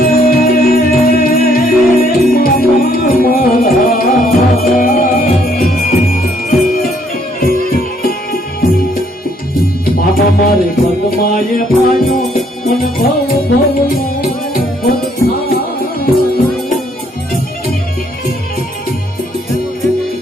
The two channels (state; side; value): normal; both; correlation 0.67